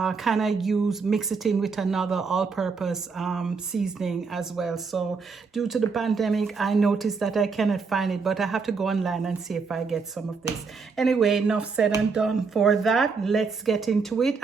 kind of mix it in with another all-purpose seasoning as well. So due to the pandemic, I noticed that I cannot find it, but I have to go online and see if I get some of this. Anyway, enough said and done for that. Let's get into it.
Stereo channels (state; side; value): quieter; left; 4.9 dB